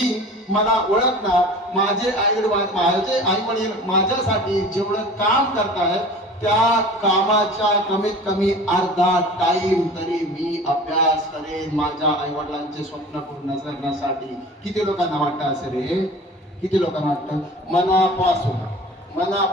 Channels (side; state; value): both; normal; correlation 0.41